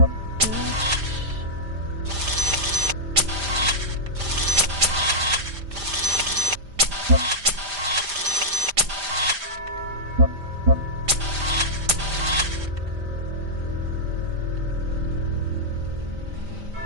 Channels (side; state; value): left; late; 5.0 ms